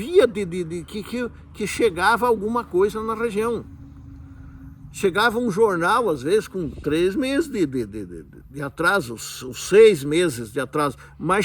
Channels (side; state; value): both; identical; correlation 1.00